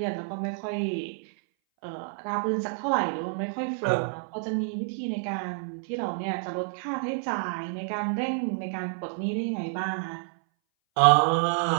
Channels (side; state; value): left; silent; 59 dB below the other